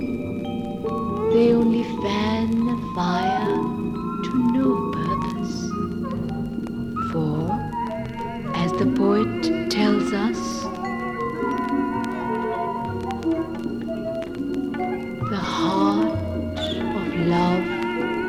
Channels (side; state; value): both; identical; correlation 1.00